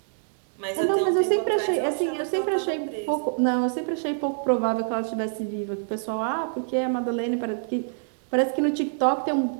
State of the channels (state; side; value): silent; left; digital silence